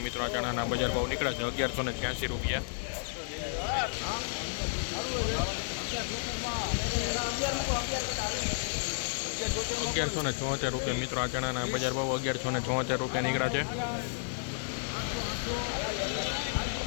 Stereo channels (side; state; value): right; silent; digital silence